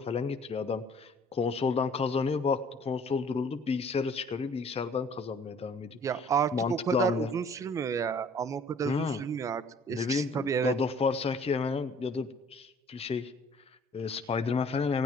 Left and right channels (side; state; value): both; normal; correlation 0.54